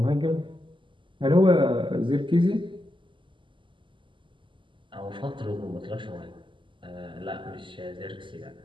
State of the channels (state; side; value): late; left; 0.24 ms